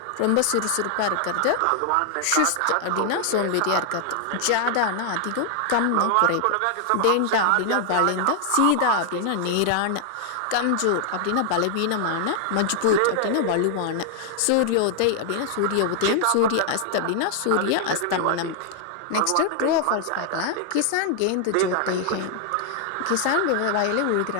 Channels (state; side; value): different; both; correlation 0.00